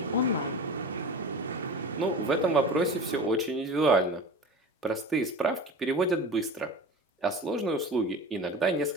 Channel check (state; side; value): normal; both; correlation 0.33